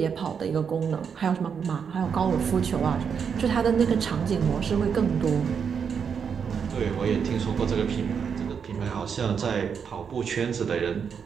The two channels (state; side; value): quieter; left; 6.8 dB